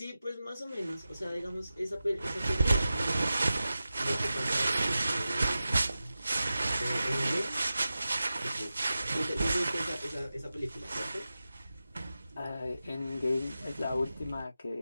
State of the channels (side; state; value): both; inverted; correlation -0.93